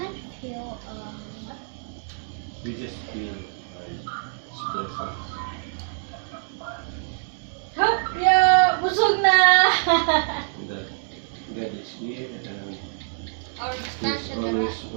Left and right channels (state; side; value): silent; left; digital silence